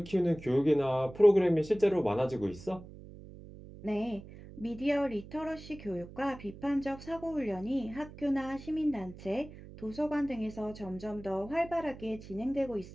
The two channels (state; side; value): noise; right; hum, 16 dB below the sound